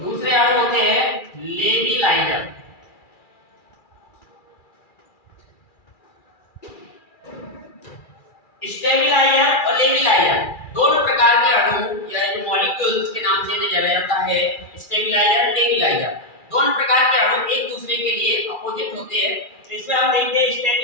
अणु होते हैं लेबिलाइजर। स्टेबिलाइजर और लेबिलाइजर दोनों प्रकार के अणु या जो मॉलिक्यूल्स के नाम से इन्हें जाना जाता है, स्टेबिलाइजर, लेबिलाइजर, दोनों प्रकार के अणु एक दूसरे के लिए अपोजिट होते हैं। तो इसमें हम देखते हैं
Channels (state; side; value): late; right; 2.4 ms